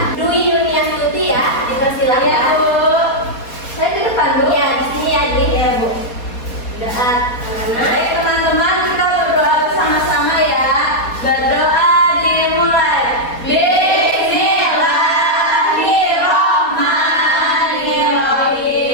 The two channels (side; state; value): right; late; 4.2 ms